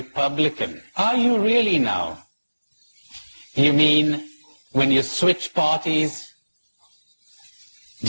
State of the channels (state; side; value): inverted; both; correlation -1.00